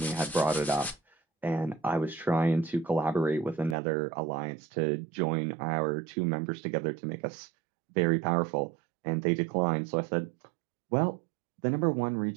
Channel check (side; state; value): left; drops out; at 3.8 s